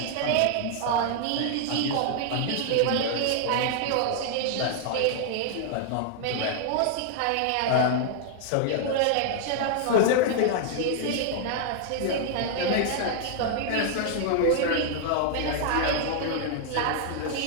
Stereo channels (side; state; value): both; different; correlation 0.00